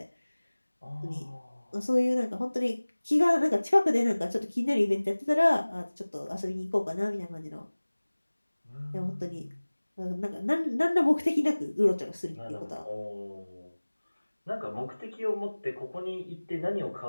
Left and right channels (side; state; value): both; inverted; correlation -1.00